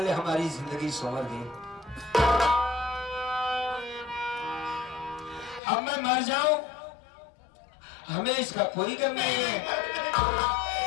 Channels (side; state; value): right; drops out; at 5.6 s